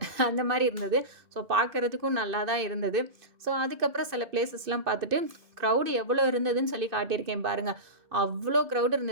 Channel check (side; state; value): left; late; 2.6 ms